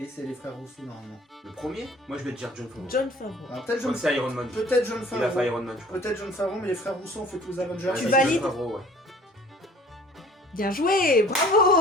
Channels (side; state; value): both; normal; correlation 0.50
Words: c'est les frères Rousseau normalement. Le premier, moi je vais te dire John Favreau. John Favreau. Alors peut-être Je crois John que c'est Iron Man. Peut-être John Il a fait Favreau. Iron Man, je crois. Peut-être John Favreau, mais les frères Rousseau ont fait tous les Avengers. Ouais, Tu c'est valides John Favreau, ouais. Bien joué,